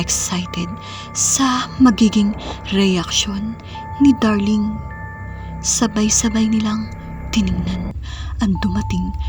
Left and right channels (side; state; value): both; identical; correlation 1.00